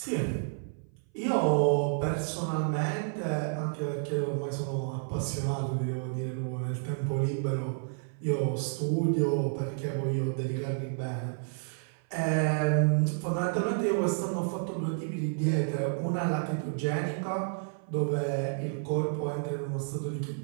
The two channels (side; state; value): left; silent; 56 dB below the other